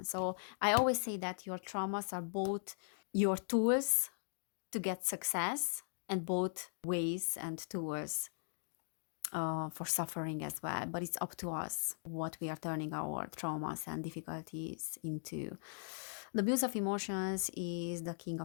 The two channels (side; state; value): right; silent; digital silence